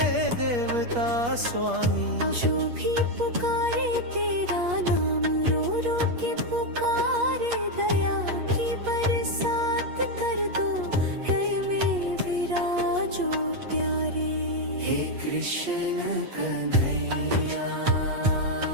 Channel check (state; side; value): late; left; 8.4 ms